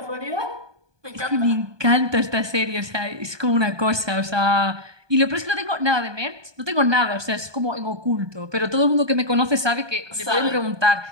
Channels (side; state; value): left; late; 1.2 ms